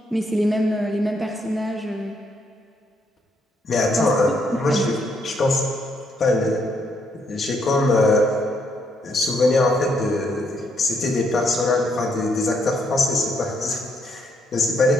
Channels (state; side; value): normal; both; correlation 0.74